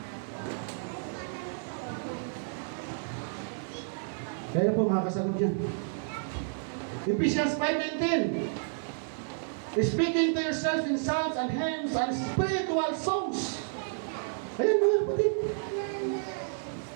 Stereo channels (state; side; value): silent; left; digital silence